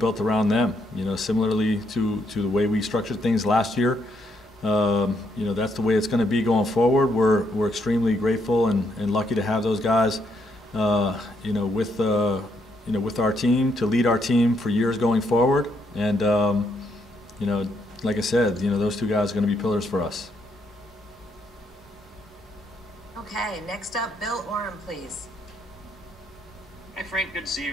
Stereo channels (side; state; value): both; normal; correlation 0.75